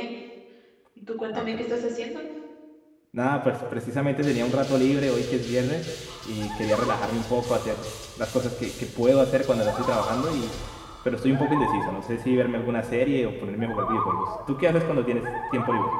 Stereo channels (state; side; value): identical; both; correlation 1.00